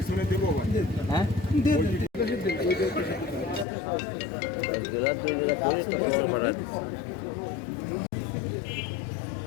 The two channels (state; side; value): drops out; right; at 3.7 s